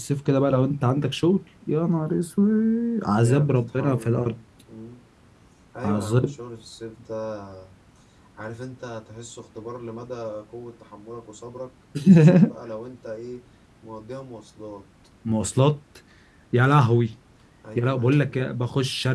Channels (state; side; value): identical; both; correlation 1.00